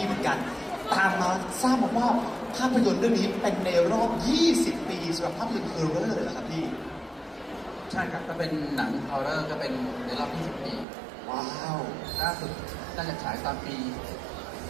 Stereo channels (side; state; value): left; drops out; at 10.9 s